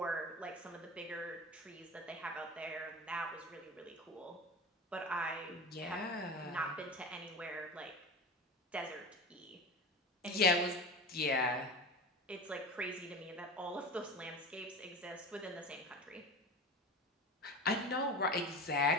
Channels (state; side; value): normal; both; correlation 0.31